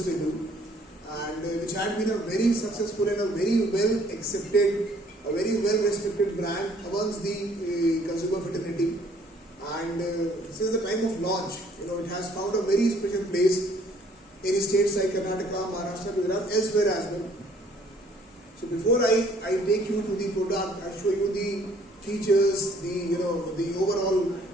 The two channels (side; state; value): both; normal; correlation 0.60